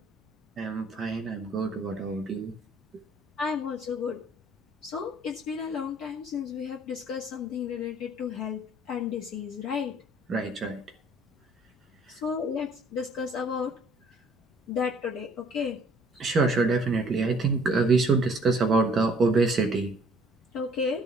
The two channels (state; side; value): normal; both; correlation 0.58